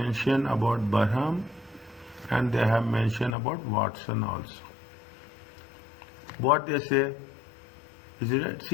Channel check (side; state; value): right; drops out; at 3.4 s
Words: about Barham and they have mentioned about Watson also. What they say, is it right?